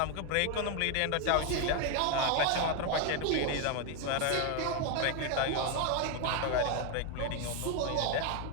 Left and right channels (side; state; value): both; different; correlation 0.01